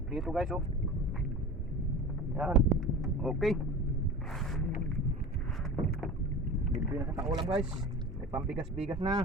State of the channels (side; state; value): both; normal; correlation 0.35